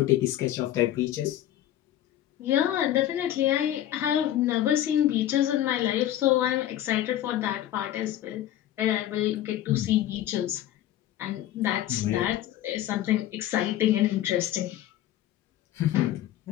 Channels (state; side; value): quieter; right; 12.5 dB